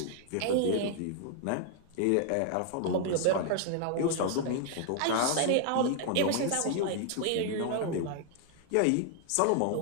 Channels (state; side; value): different; both; correlation 0.00